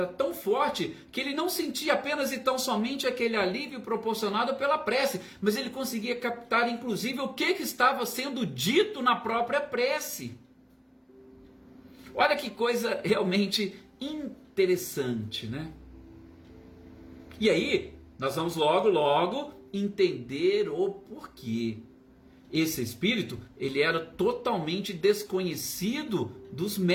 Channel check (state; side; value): identical; both; correlation 1.00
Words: tão forte que ele não sentia apenas e tão somente aquele alívio proporcionado pela prece, mas ele conseguia captar inclusive o que estava sendo dito na própria prece. Olha que coisa realmente interessante, né? E aí, nós vamos logo entender o porquê. Esse espírito, ele era totalmente desconhecido dos